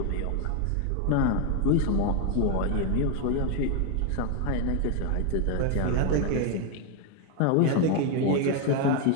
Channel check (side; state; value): both; different; correlation 0.01